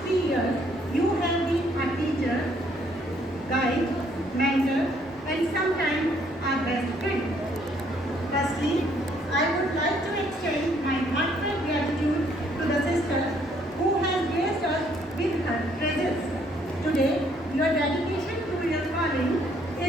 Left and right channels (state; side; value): normal; both; correlation 0.66